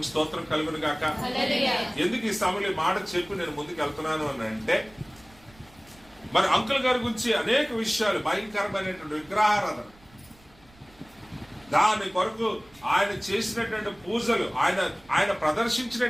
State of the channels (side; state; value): right; noise; rumble, 27 dB below the sound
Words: స్తోత్రం కలుగును గాక. ఎందుకు ఈ సమయంలో మాట చెప్పి నేను ముందుకు వెళ్తున్నాను అని అంటే, మరి అంకుల్ గారి గురించి అనేక విషయాలు, భయంకరమైనటువంటి విగ్రహారాధన, దాని కొరకు ఆయన చేసినటువంటి పూజలు, ఆయన